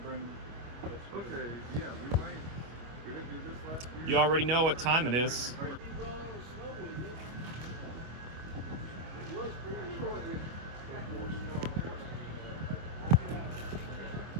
bring this. Okay, yeah, we might. We didn't do this last year. You already know what time it is.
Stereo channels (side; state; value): left; late; 25 ms